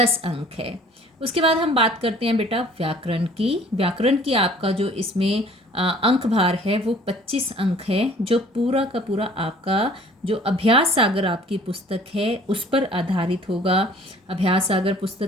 अंक है। उसके बाद हम बात करते हैं बेटा व्याकरण की। व्याकरण की आपका जो इसमें अंक भार है वो 25 अंक है, जो पूरा का पूरा आपका जो अभ्यास सागर आपकी पुस्तक है उस पर आधारित होगा। अभ्यास सागर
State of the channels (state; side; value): normal; both; correlation 0.52